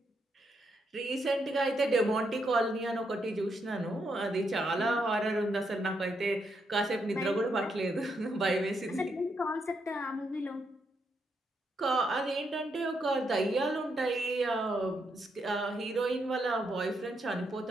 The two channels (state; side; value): normal; both; correlation 0.79